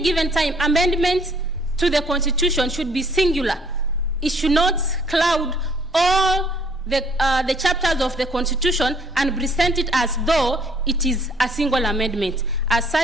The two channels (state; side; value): normal; both; correlation 0.62